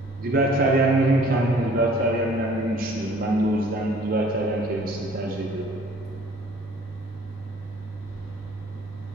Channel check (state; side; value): normal; both; correlation 0.54